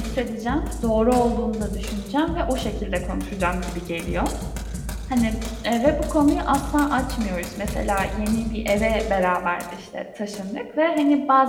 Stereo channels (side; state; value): both; identical; correlation 1.00